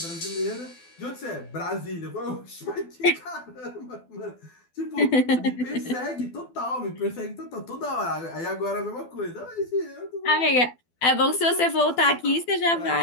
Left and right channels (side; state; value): right; late; 12 ms